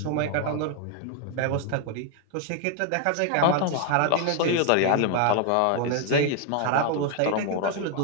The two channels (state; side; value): different; both; correlation 0.00